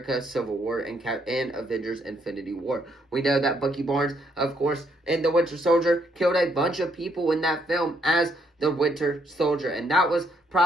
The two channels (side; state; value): both; normal; correlation 0.72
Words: Civil War and Avengers Infinity War. We know that Bucky Barnes, of course, in the Winter Soldier, killed a bunch of people in that film as the Winter Soldier, and that was